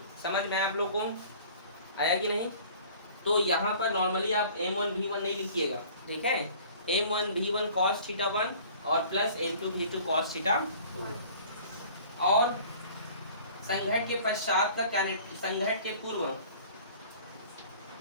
समझ में आप लोगों को आया कि नहीं। तो यहाँ पर नॉर्मली आप m1 v1 नहीं लिखिएगा, ठीक है। m1 v1 cos थीटा 1 और plus m2 v2 cos theta 2। और संघट के पश्चात का संघट के पूर्व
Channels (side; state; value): both; inverted; correlation -0.48